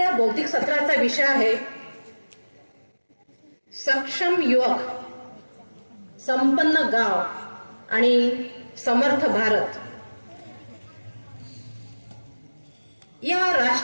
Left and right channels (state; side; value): inverted; both; correlation -1.00